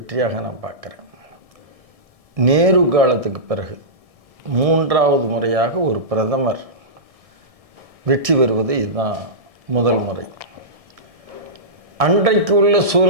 நான் பார்க்குறேன். நேரு காலத்துக்கு பிறகு 3வது முறையாக ஒரு பிரதமர் வெற்றி பெறுவது இதுதான் முதல் முறை. அன்றைக்கு உள்ள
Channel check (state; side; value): late; left; 1.6 ms